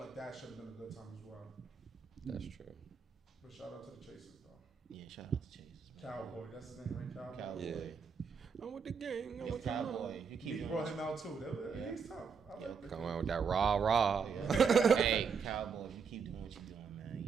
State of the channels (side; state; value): left; quieter; 6.0 dB